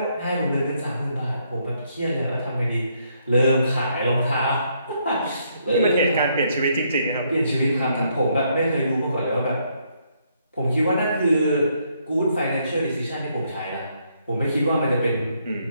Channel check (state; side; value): inverted; both; correlation -0.73